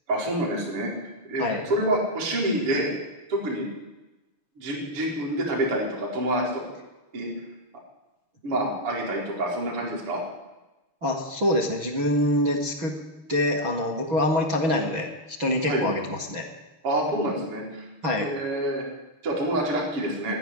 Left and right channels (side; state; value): left; late; 6.2 ms